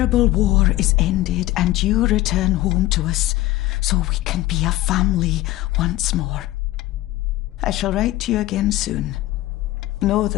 war is ended and you return home to us so we can be a family once more. I shall write to you again soon. Know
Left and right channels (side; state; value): right; quieter; 16.7 dB